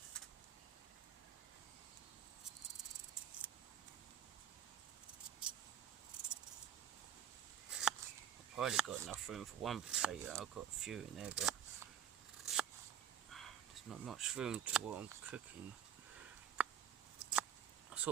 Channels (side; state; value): left; quieter; 9.1 dB